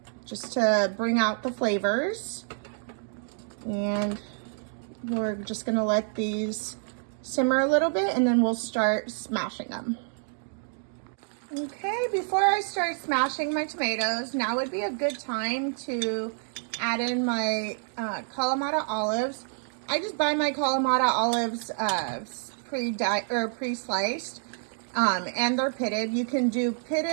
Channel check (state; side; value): silent; left; 59 dB below the other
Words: just to bring out the flavors. And we're just gonna let these simmer a little bit, and then we'll start smashing them. Okay, before I start smashing my tomatoes, now would be a good time to add in my Kalamata olives. I just buy my Kalamata olives pre-sliced, and they're pitted. You can do